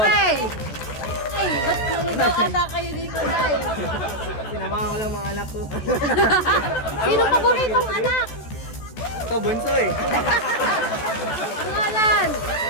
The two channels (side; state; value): right; late; 14 ms